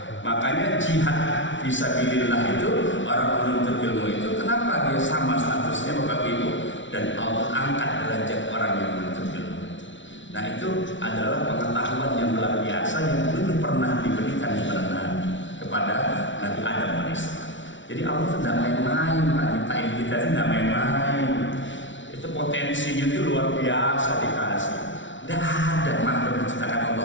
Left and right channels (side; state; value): right; late; 0.55 ms